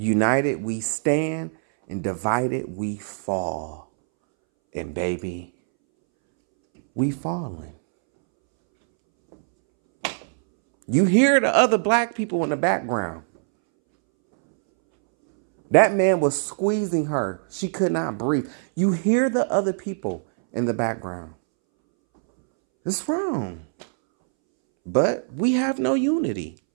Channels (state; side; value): silent; left; 63 dB below the other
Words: we stand, and divided we fall. And baby, we falling. You hear the other black people in the background. That man was squeezing her. She could not breathe. You hear the other people in the background. It's wrong. But we have no unity.